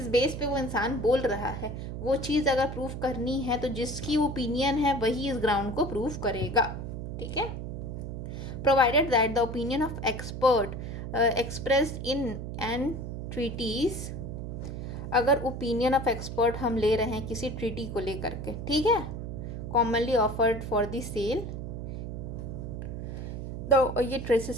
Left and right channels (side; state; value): right; noise; hum, 6 dB below the sound